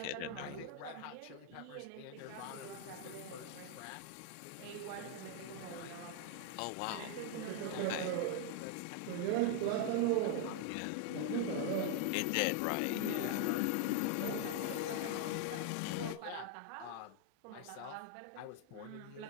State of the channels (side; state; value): both; different; correlation 0.00